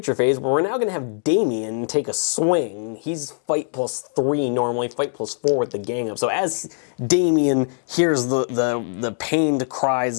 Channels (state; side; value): silent; right; digital silence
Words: phase, where we're now going to have Damien take a swing. He's fight +3 normally, fight +4 with the gang up. So as Damien hears the pained cries